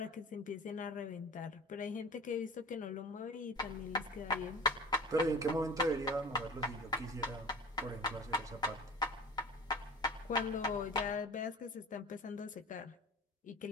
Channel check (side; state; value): both; normal; correlation 0.39